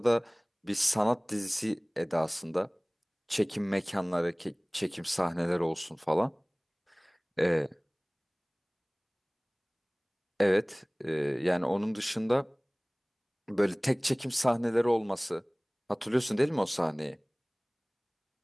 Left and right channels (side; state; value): both; identical; correlation 1.00